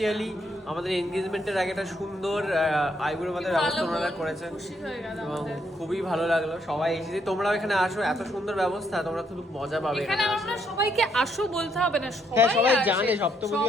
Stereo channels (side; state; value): both; normal; correlation 0.74